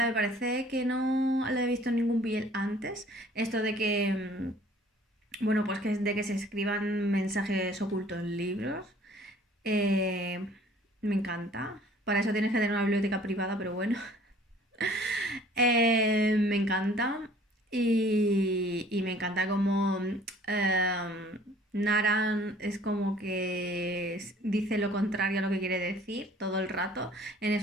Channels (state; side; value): normal; both; correlation 0.53